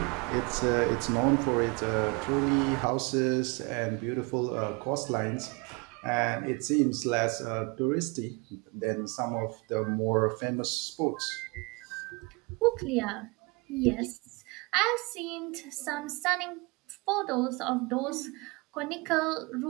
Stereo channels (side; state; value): left; quieter; 28.1 dB